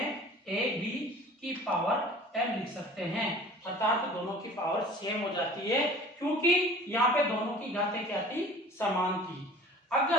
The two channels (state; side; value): normal; both; correlation 0.45